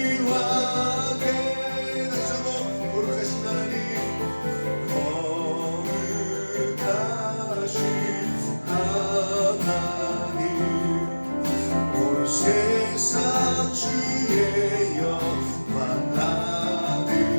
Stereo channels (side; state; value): both; inverted; correlation -1.00